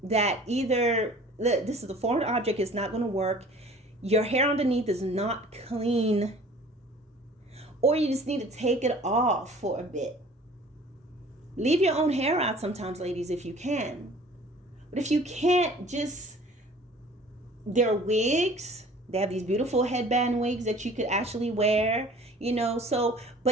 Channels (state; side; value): normal; both; correlation 0.48